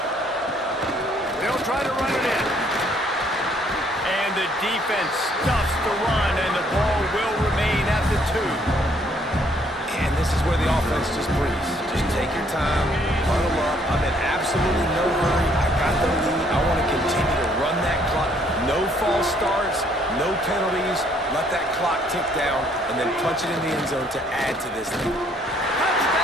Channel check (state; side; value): normal; both; correlation 0.65